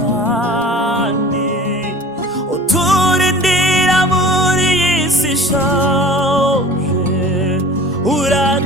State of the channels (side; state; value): both; normal; correlation 0.42